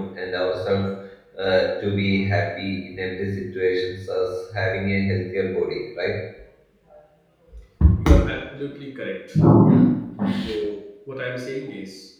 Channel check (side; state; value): both; identical; correlation 1.00